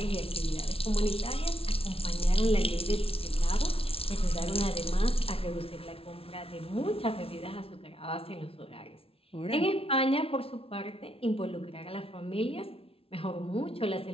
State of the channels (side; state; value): right; late; 0.27 ms